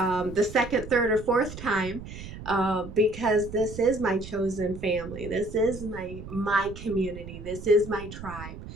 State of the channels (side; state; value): right; noise; rumble, 12 dB below the sound